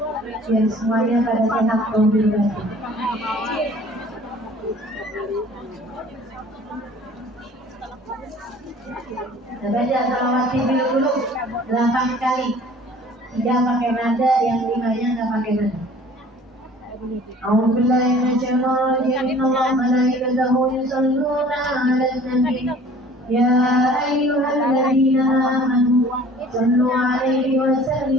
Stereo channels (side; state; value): both; normal; correlation 0.49